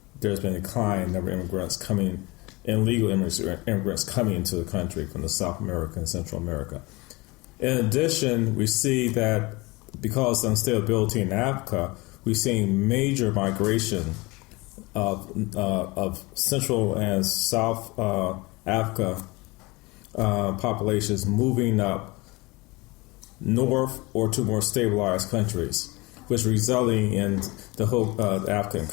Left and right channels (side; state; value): right; quieter; 23.9 dB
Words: there's been a decline in number of immigrants coming, illegal immigrants coming into the country from the South America and Central America. In addition, we see that because of instability in Africa, we're seeing major migration of Central and South Africa populations moving up north or to more stabilized countries, which resulting in the whole African